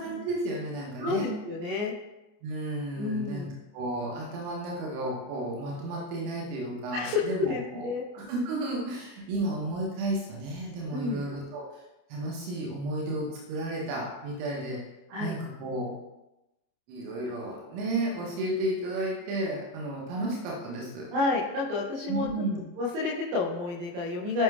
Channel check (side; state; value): left; late; 29 ms